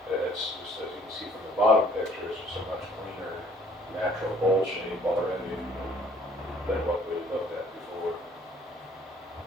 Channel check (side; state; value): both; normal; correlation 0.58